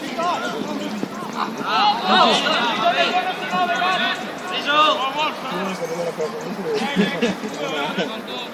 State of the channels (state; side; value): identical; both; correlation 1.00